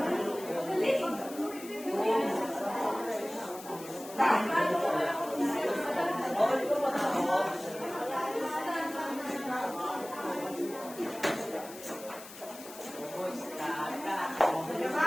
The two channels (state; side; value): noise; left; hiss, 15 dB below the sound